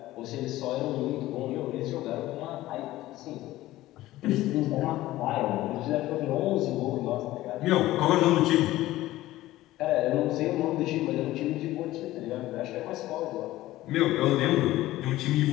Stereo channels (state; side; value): quieter; right; 16.2 dB